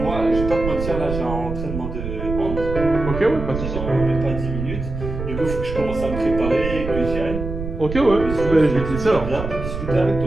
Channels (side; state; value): right; noise; rumble, 6 dB below the sound